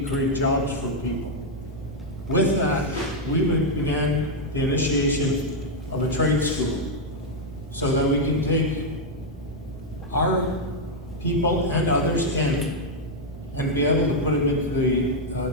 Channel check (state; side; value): normal; both; correlation -0.01